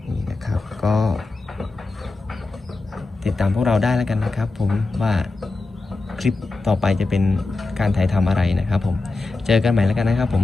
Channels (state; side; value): quieter; right; 3.4 dB